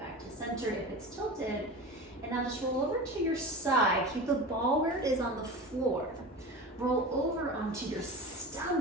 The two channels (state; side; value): normal; both; correlation 0.31